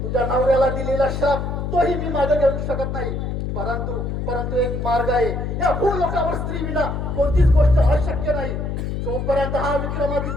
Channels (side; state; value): left; noise; hum, 3 dB below the sound